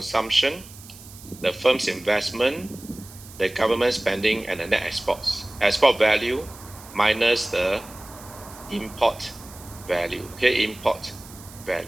the firm's investment, the government spending, and the net exports. Export value minus the import value. Okay, import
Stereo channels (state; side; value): noise; right; hiss, 19 dB below the sound